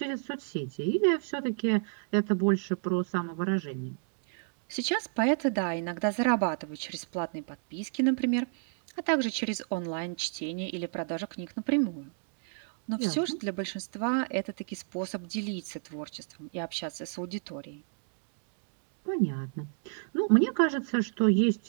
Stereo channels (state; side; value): silent; left; digital silence